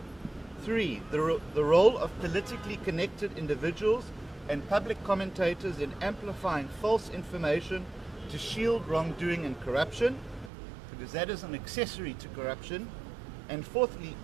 3, the role of politically connected individuals and public commentators in amplifying false information to shield wrongdoing and corruption, because that is an accessory to corruption. And 4thly,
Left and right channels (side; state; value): left; drops out; at 10.5 s